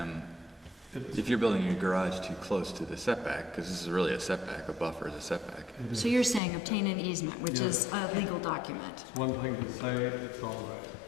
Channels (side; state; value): right; drops out; at 6.4 s